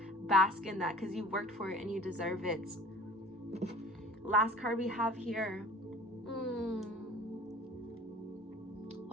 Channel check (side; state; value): both; normal; correlation 0.46